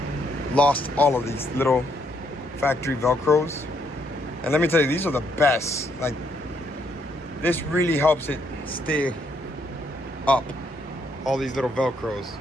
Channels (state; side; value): normal; both; correlation 0.73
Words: lost all of these little factory Velcros. And let me tell you, these are the best. Like, this really helps it stay up. All these little Velcros.